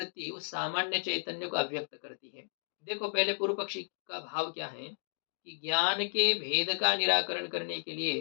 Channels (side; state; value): right; silent; digital silence